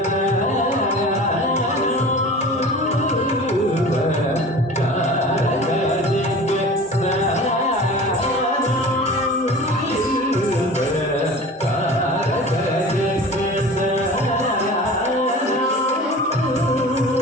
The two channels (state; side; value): normal; both; correlation 0.39